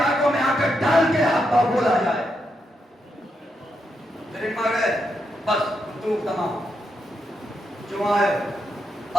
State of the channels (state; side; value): normal; both; correlation 0.82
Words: میں آ کر ڈال کے حقا بولا جائے۔ ترکما گئے، بس گفتگو تمام۔ جو آئے